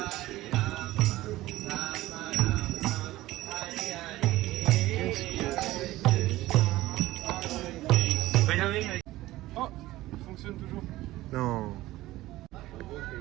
Oh, il fonctionne toujours. Non.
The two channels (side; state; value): left; quieter; 16.9 dB